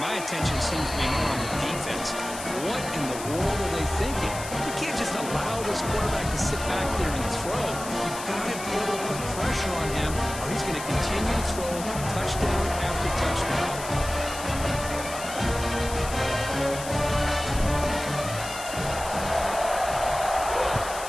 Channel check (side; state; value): left; noise; hiss, 10 dB below the sound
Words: attention seems to be more on the defense. What in the world are they thinking? You can't just allow this quarterback to sit back there and throw. You've got to be able to put pressure on him, or he's going to continue to throw touchdown after touchdown.